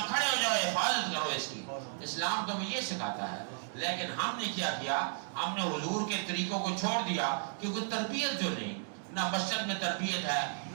کھڑے ہو جاؤ, حفاظت کرو اس کی. اسلام تو یہ سکھاتا ہے. لیکن ہم نے کیا کیا, ہم نے حضور کے طریقوں کو چھوڑ دیا, کیونکہ تربیت جو نہیں, نہ مسجد میں تربیت ہے,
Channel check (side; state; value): left; silent; digital silence